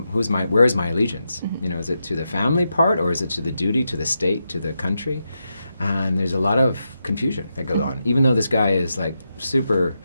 is my allegiance? Is it to the family part, or is it to the duty, to the state, to the country? And there's a lot of confusion that goes on, even though this guy is like super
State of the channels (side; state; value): both; inverted; correlation -0.87